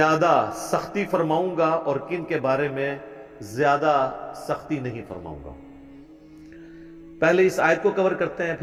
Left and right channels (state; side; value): identical; both; correlation 1.00